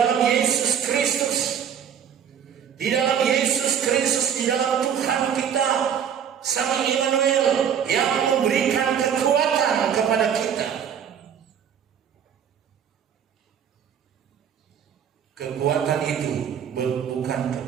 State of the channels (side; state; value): left; quieter; 8.3 dB